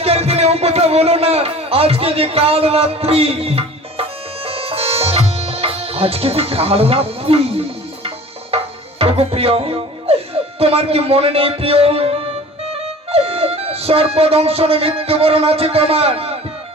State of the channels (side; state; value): both; normal; correlation 0.43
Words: দিনে ও কথা বলো না আজকে যে কাল রাত্রি প্রিয় তোমার কি মনে নেই প্রিয় সর্বদংশন মৃত্যুবরণ আছে তোমার